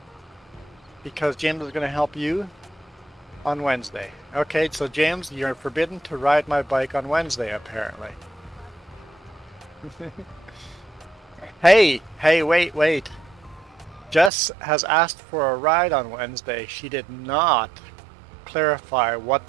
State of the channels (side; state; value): left; drops out; at 14.3 s